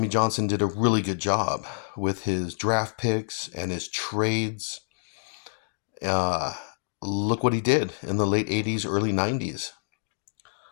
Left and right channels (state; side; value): silent; right; digital silence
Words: Johnson did a really good job with his draft picks and his trades. Look what he did in the late 80s, early 90s.